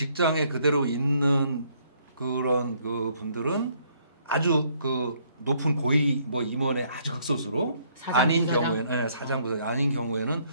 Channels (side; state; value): both; inverted; correlation -0.67